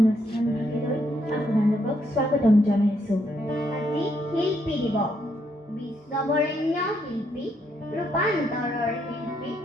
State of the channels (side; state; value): both; normal; correlation 0.75